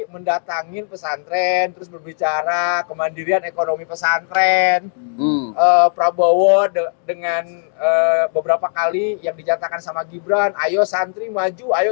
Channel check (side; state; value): right; silent; 56 dB below the other